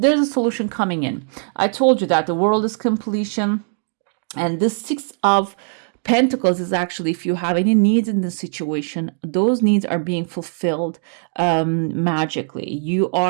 a solution coming in. I told you that the world is completion, and this 6 of Pentacles is actually if you have any needs in this situation, those needs are being fulfilled magically. You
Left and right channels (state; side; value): silent; left; 66 dB below the other